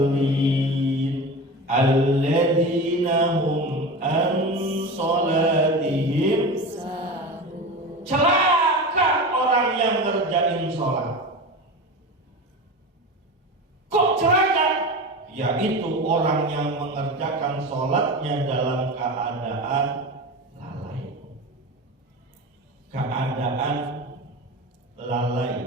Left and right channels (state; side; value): normal; both; correlation 0.28